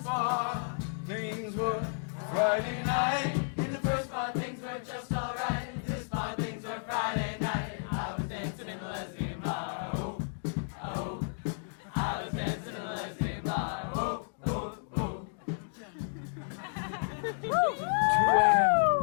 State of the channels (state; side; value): silent; right; digital silence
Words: bar, things were Friday night. In the first bar, things were just alright. In this bar, things were Friday night. I was dancing in the lesbian bar. Oh, oh. I was dancing in the lesbian bar. Oh, oh, oh.